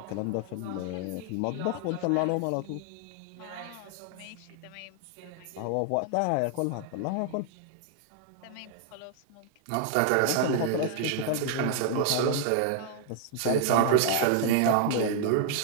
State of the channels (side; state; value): both; different; correlation 0.00